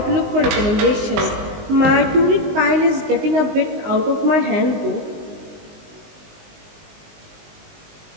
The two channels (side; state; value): left; late; 19 ms